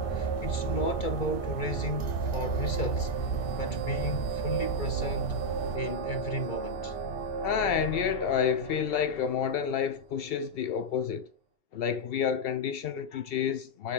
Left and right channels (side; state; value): right; late; 2.3 ms